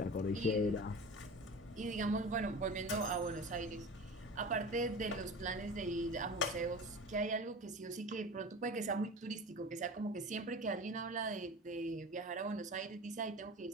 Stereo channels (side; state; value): both; normal; correlation 0.34